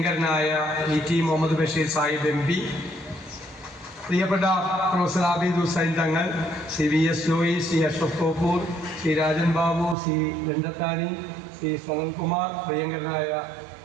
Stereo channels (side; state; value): left; drops out; at 10.0 s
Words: ET മുഹമ്മദ് ബഷീർ സാഹിബ് MP, പ്രിയപ്പെട്ട പ്രൊഫസർ ആബിദ് ഹുസൈൻ തങ്ങൾ, VS ജോയി, അഷ്റഫ് കോപ്പൂർ, രാജൻ ബാബു, രഞ്ജത്താനി, സനൽകുമാർ, പ്രിയങ്കരനായ